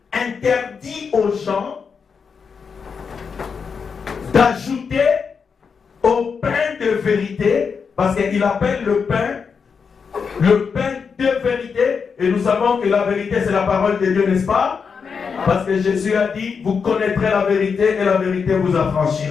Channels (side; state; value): right; quieter; 5.9 dB